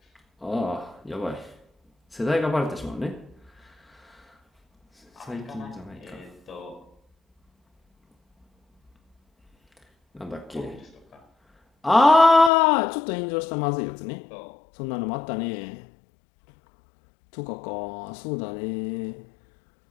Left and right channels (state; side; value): drops out; right; at 12.5 s